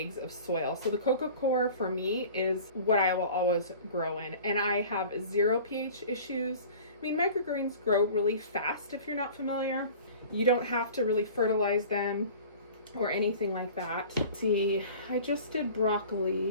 of soil. So the cocoa coir for me is what I will always grow in, and I have 0 pH issues. I mean, microgreens grow really fast if you're not familiar. You don't have to really fertilize them or anything like that. See, I just did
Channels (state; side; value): inverted; both; correlation -0.42